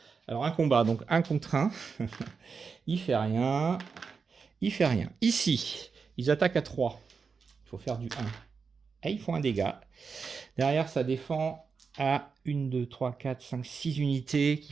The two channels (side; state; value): left; quieter; 5.3 dB